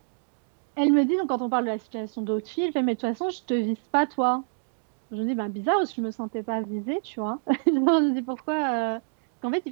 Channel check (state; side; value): silent; left; digital silence